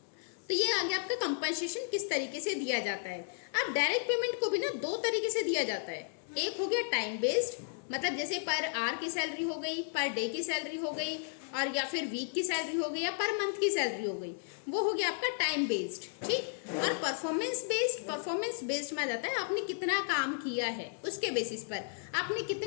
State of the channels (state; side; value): silent; right; digital silence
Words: तो ये आ गया आपका कंपनसेशन किस तरीके से दिया जाता है। अब डायरेक्ट पेमेंट को भी ना दो तरीके से दिया जाता है, एक हो गया टाइम बेस्ड, मतलब जैसे पर आवर की सैलरी हो गई, पर डे की सैलरी हो गई, और या फिर वीक की सैलरी हो गई, या पर मंथ की सैलरी हो गई, वो हो गया आपका टाइम बेस्ड, ठीक। और परफॉर्मेंस बेस्ड, परफॉर्मेंस बेस्ड में आ जाता है आपने कितना काम किया है उसके बेसिस पर, आपने